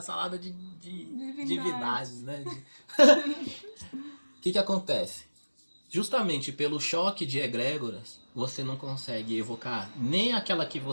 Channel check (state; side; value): inverted; both; correlation -1.00